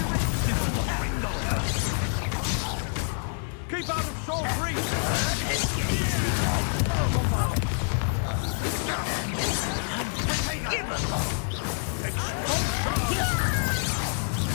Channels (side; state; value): right; silent; 60 dB below the other